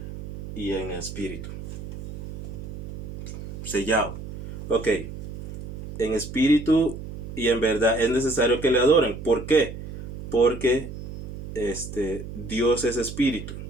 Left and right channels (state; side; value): noise; right; hum, 10 dB below the sound